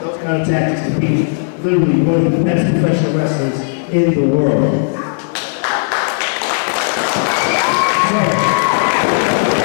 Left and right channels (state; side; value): silent; right; digital silence